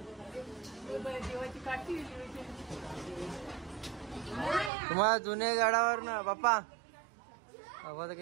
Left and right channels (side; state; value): left; drops out; at 4.7 s